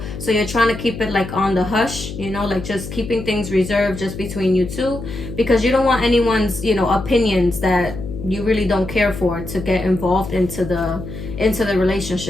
So you're trying to keep it like on the hush, like just keeping things reserved just between you two, because you don't want anyone's, opinions that you really don't care for to get involved into the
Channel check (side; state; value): left; noise; hum, 9 dB below the sound